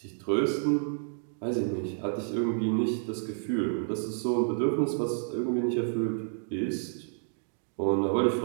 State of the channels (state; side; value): silent; left; digital silence